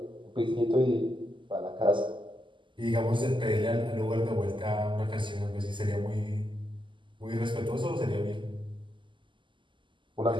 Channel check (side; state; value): left; late; 0.24 ms